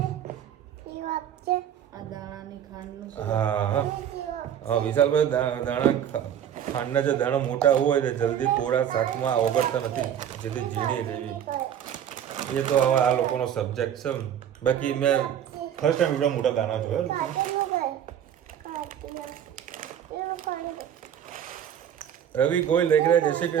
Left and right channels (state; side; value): quieter; left; 9.7 dB